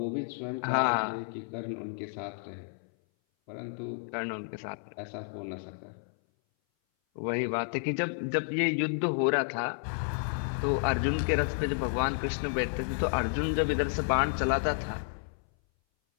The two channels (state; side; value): silent; right; 57 dB below the other